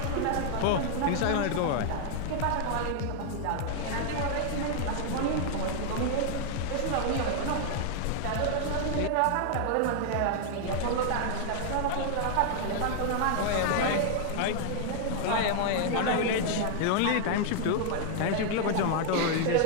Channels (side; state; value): both; different; correlation 0.00